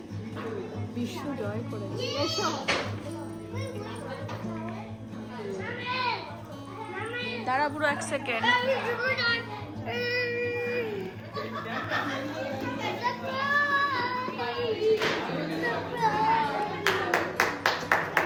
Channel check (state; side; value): identical; both; correlation 1.00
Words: বিশ্ব জয় করে দাঁড়া পুরো 1 সেকেন্ড।